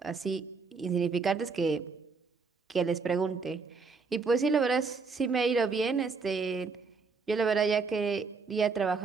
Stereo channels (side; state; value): left; quieter; 4.7 dB